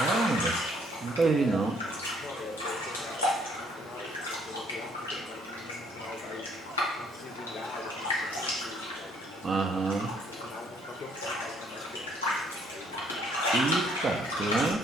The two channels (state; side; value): normal; both; correlation 0.64